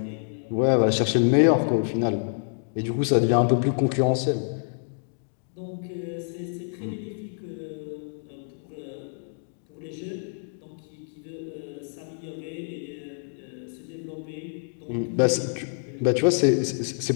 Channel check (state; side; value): silent; right; digital silence